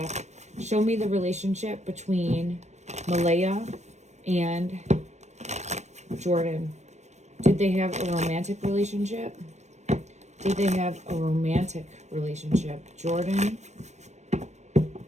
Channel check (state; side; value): late; left; 0.33 ms